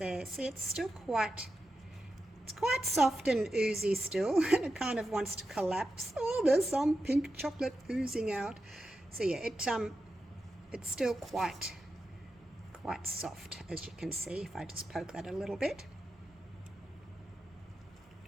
see it's still quite, it's quite soft and oozy still, and it kind of wants to collapse. Oh, there's some pink chocolate oozing out. So yeah, it's still quite soft, as you can see, if I just poke that a little bit.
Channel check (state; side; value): normal; both; correlation 0.90